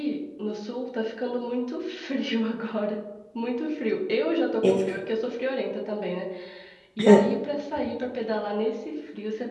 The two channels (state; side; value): identical; both; correlation 1.00